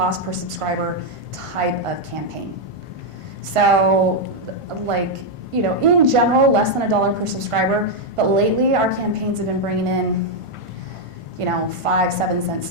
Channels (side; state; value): left; late; 1.5 ms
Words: per subscriber type of campaign. So in general, less than $1 per subscriber, but lately our campaigns have been bringing in 5-7 cent